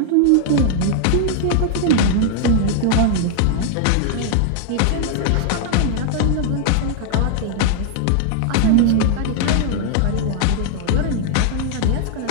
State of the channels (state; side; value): different; both; correlation 0.00